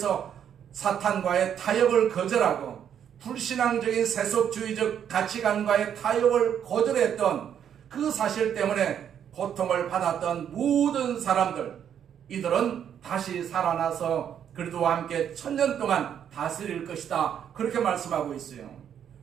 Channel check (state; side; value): quieter; left; 9.0 dB